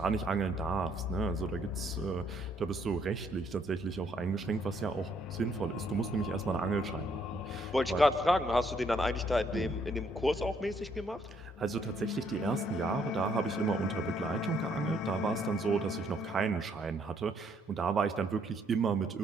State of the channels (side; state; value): both; normal; correlation 0.69